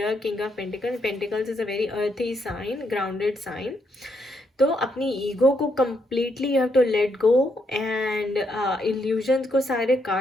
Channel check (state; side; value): normal; both; correlation 0.77